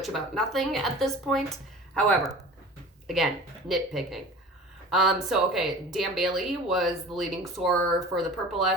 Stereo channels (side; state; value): both; normal; correlation 0.40